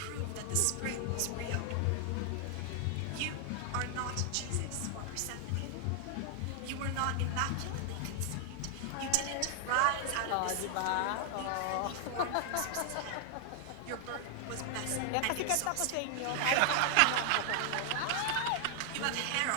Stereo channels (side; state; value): both; different; correlation 0.00